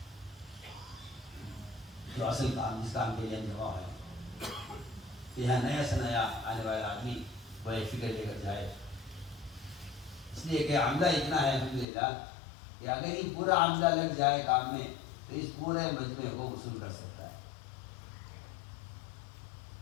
جو اصل کام، جس کام کے لیے ہم جمع ہے، یہاں نیا سے نیا آنے والا آدمی وہ ایک فکر لے کر جائے. اس لیے کہ عملہ اتنا ہے الحمدللہ کہ اگر یہ پورا عملہ لگ جائے کام میں تو اس پورے مجمع کو وصول کر سکتا ہے.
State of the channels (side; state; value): right; drops out; at 11.9 s